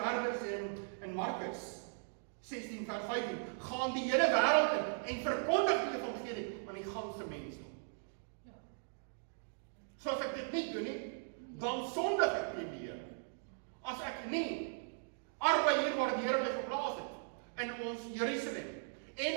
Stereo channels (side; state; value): left; silent; digital silence